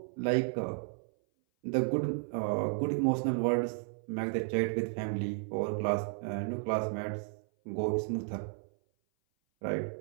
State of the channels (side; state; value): left; silent; 56 dB below the other